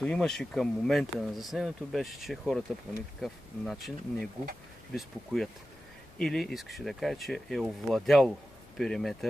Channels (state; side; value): normal; both; correlation 0.94